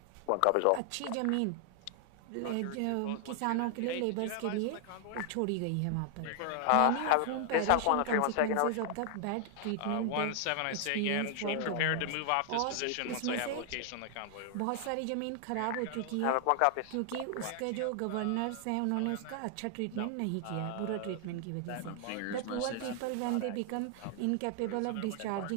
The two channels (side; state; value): both; different; correlation 0.00